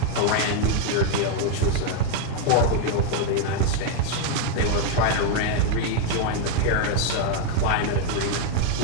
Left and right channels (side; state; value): both; different; correlation 0.00